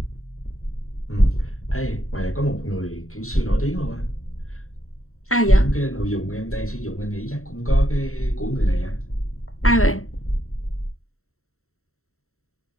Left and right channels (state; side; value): late; right; 0.63 ms